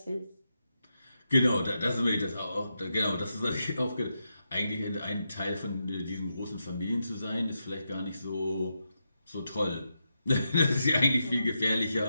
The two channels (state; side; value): inverted; both; correlation -0.85